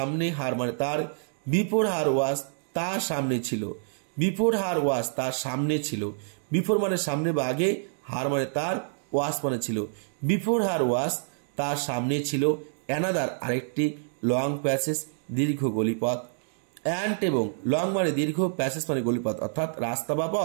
হার মানে তার, বিফোর হার ওয়াজ তার সামনে ছিল, বিফোর মানে সামনে বা আগে, হার মানে তার, ওয়াজ মানে ছিল, বিফোর হার ওয়াজ তার সামনে ছিল, অ্যানাদার আরেকটি, লং প্যাসেজ দীর্ঘ গলিপথ, অ্যান্ড এবং লং মানে দীর্ঘ, প্যাসেজ মানে গলিপথ অর্থাৎ রাস্তা বা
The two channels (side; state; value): left; silent; digital silence